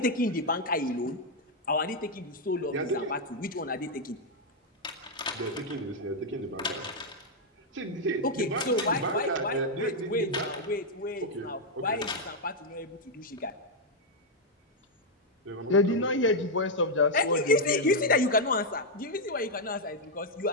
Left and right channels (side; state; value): both; normal; correlation -0.01